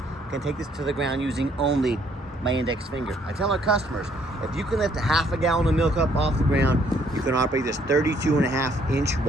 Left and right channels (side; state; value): both; normal; correlation 0.66